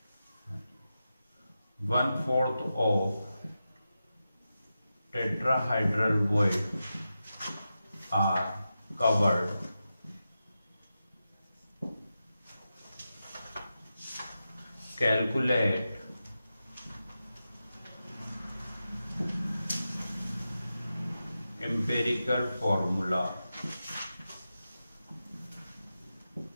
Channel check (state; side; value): inverted; both; correlation -0.91